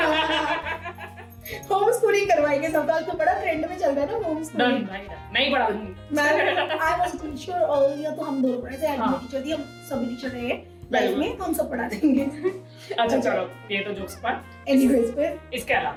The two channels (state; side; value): identical; both; correlation 1.00